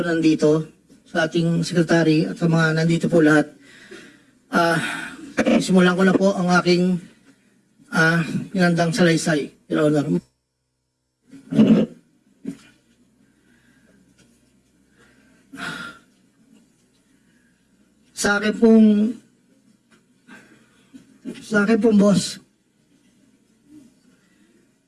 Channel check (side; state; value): both; identical; correlation 1.00